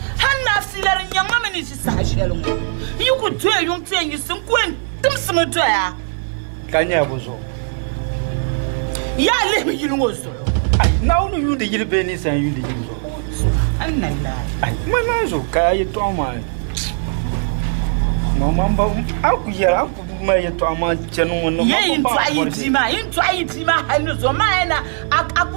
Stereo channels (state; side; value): silent; left; digital silence